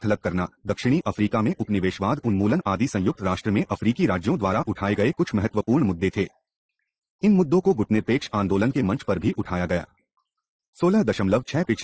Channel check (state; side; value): identical; both; correlation 1.00